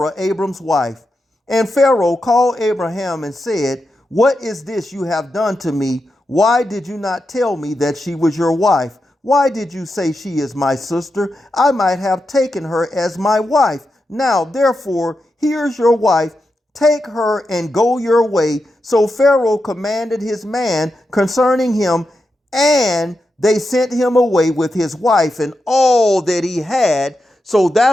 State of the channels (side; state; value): both; normal; correlation 0.88